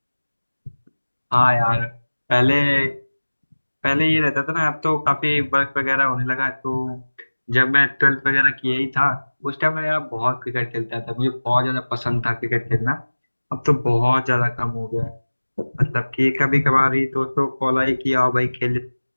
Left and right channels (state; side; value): inverted; both; correlation -1.00